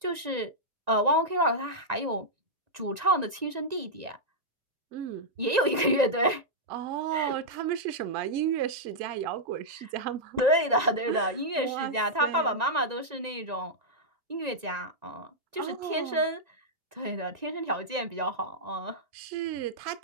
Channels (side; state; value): left; late; 1.9 ms